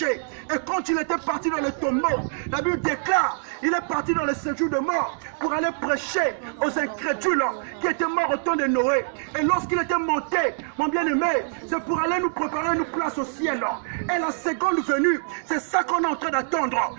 Et quand il était parti dans le tombeau, la Bible déclare, il est parti dans le séjour de mort pour aller prêcher aux incrédules qui étaient morts au temps de Noé. Et lorsqu'il était monté, mon bien-aimé, c'est pour aller nous préparer une place au ciel. Et la seconde venue, c'est ça qu'on est en train d'attendre,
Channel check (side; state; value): left; silent; digital silence